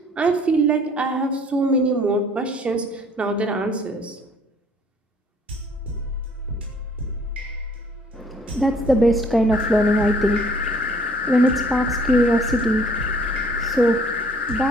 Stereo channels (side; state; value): both; normal; correlation 0.58